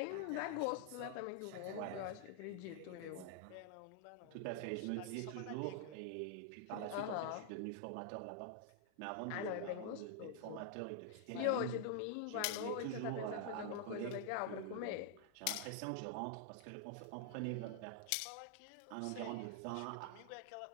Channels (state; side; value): different; both; correlation 0.00